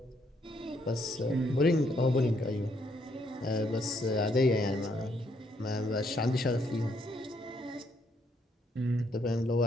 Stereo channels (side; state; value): both; normal; correlation 0.72